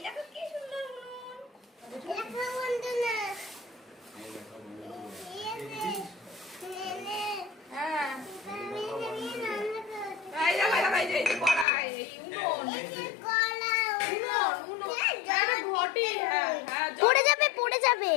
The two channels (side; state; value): right; drops out; at 11.7 s